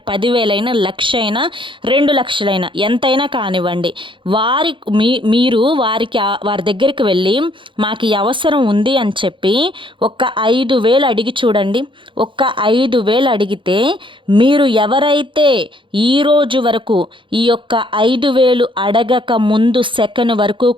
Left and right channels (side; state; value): left; late; 0.24 ms